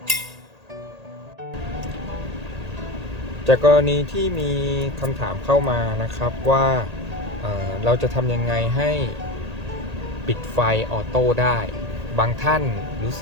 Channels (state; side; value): late; left; 1.8 ms